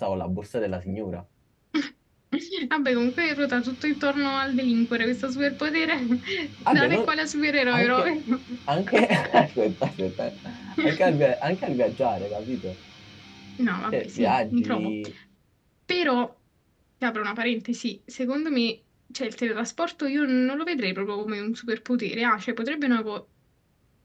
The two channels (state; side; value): identical; both; correlation 1.00